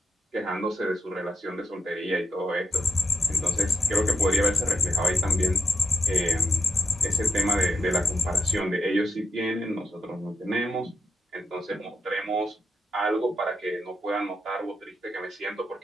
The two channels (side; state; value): both; normal; correlation 0.84